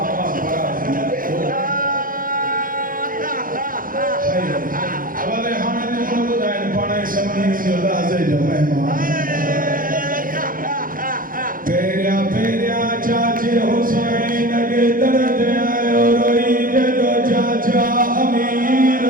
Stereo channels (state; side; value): late; left; 0.40 ms